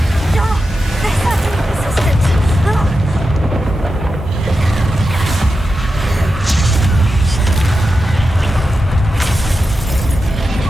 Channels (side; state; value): both; normal; correlation 0.90